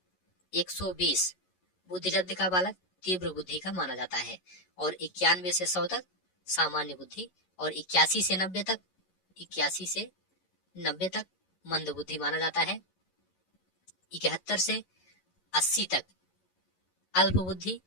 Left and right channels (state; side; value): late; right; 11 ms